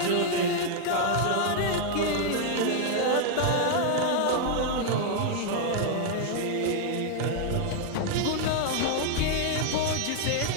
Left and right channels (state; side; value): different; both; correlation 0.00